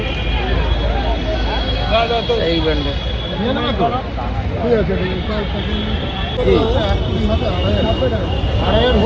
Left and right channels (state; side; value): identical; both; correlation 1.00